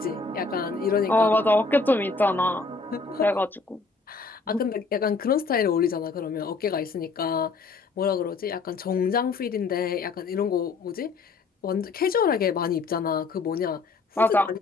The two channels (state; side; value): quieter; right; 4.2 dB